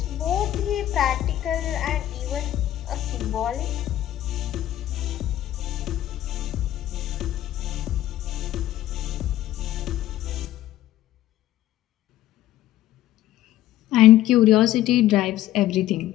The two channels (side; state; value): right; quieter; 13.5 dB